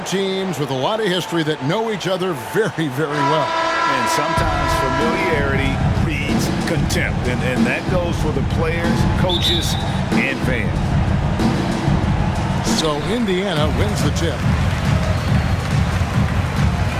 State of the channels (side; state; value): both; identical; correlation 1.00